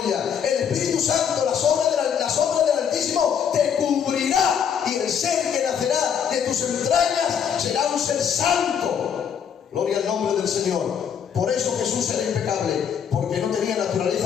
el Espíritu Santo, la sombra del Altísimo te cubrirá, y el ser que nacerá de tus entrañas será un ser santo. Gloria al nombre del Señor. Por eso Jesús era impecable, porque no tenía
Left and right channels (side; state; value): right; quieter; 7.8 dB